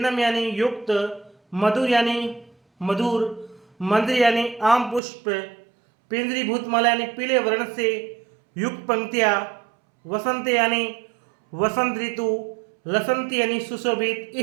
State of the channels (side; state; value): left; drops out; at 5.0 s